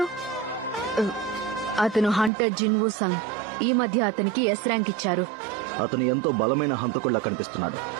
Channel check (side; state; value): left; drops out; at 2.3 s